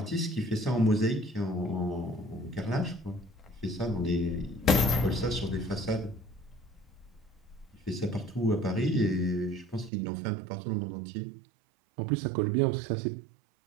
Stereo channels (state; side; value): drops out; left; at 9.9 s